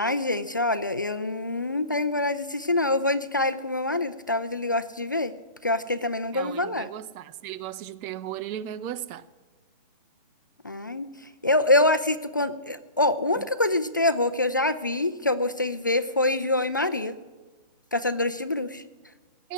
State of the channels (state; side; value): inverted; both; correlation -0.40